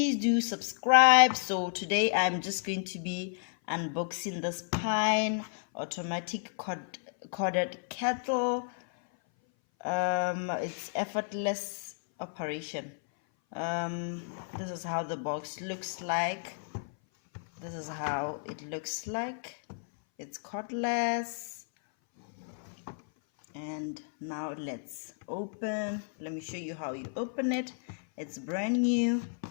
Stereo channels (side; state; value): right; silent; 56 dB below the other